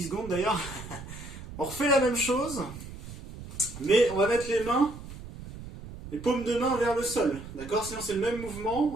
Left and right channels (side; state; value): right; noise; rumble, 13 dB below the sound